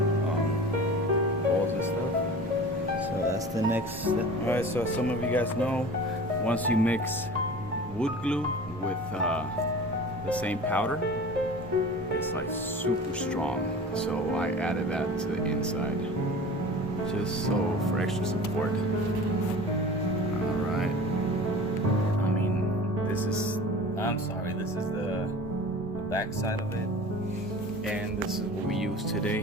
holes and stuff. So that's the next step. Alright, so as some of you guys know, once you mix wood glue with the same powder, it's like super strong, so I added that to the inside just so for extra support. All right, I mean, this is the back side of it, and this is what we use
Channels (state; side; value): normal; both; correlation 0.38